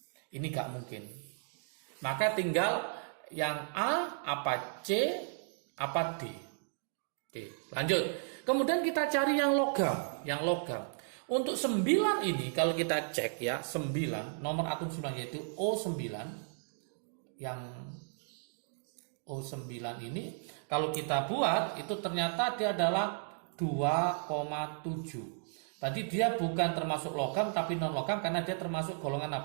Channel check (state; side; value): silent; left; digital silence